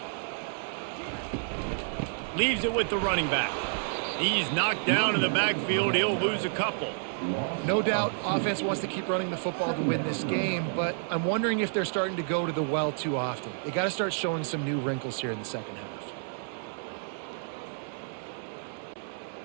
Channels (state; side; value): silent; left; 58 dB below the other